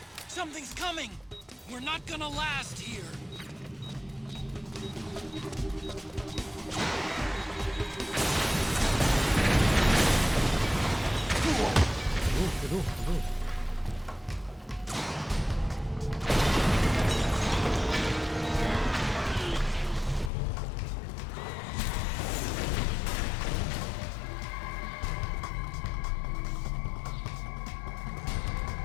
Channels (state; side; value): drops out; right; at 20.3 s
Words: Something's coming. We're not gonna last here. Aduh.